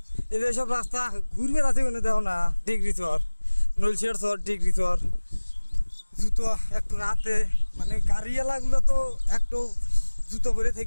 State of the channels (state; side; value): inverted; both; correlation -1.00